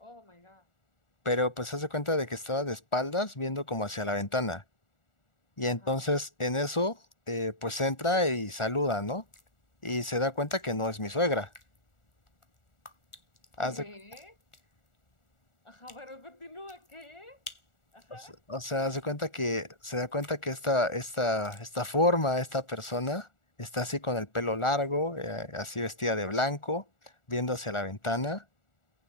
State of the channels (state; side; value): late; right; 1.4 ms